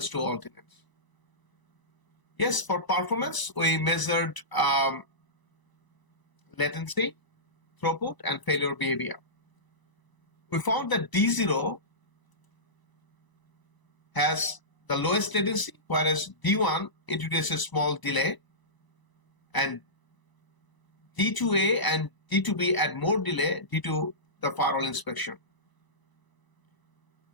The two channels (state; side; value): late; right; 1.0 ms